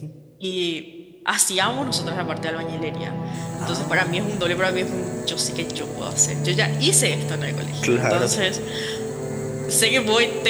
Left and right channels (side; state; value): both; identical; correlation 1.00